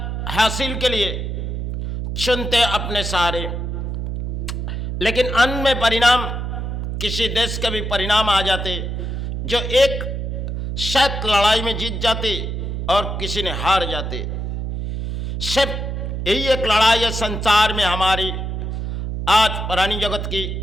हासिल के लिए चुनते अपने सहारे, लेकिन अंत में परिणाम किसी देश के भी परिणाम आ जाते जो एक शायद लड़ाई में जीत जाते और किसी ने हार जाते। सिर्फ यही एक लड़ाई है संसार में हमारी, आज पुरानी जगत की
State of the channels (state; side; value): noise; right; hum, 3 dB below the sound